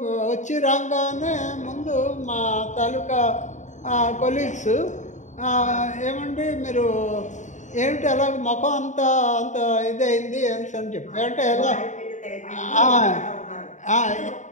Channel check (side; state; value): right; late; 0.35 ms